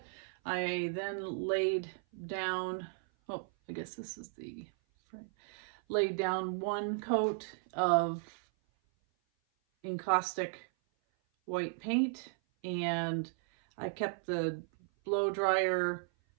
I then laid down, oh, I guess this is the frame, laid down one coat of encaustic white paint, and I kept the blow dryer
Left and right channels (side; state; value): left; silent; 54 dB below the other